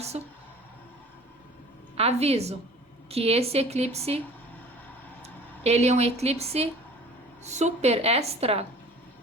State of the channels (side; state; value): both; normal; correlation 0.46